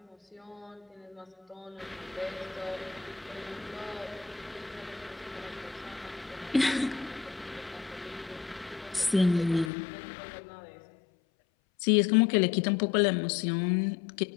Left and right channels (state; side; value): drops out; right; at 9.7 s